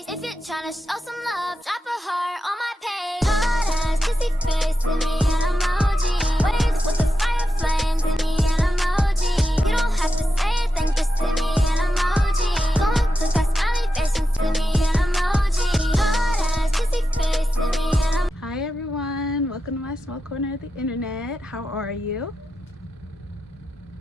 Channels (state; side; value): normal; both; correlation 0.89